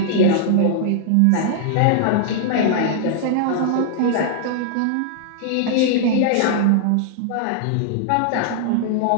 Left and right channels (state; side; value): different; both; correlation -0.01